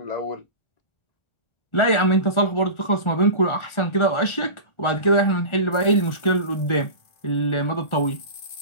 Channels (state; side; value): late; right; 1.4 ms